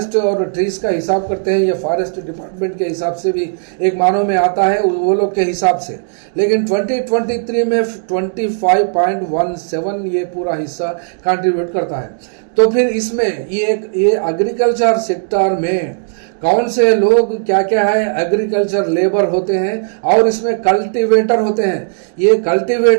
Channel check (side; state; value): left; silent; digital silence